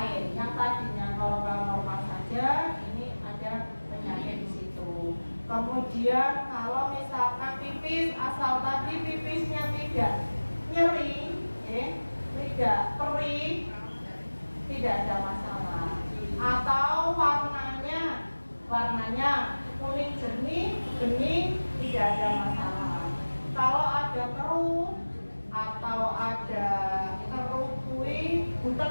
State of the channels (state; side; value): inverted; both; correlation -1.00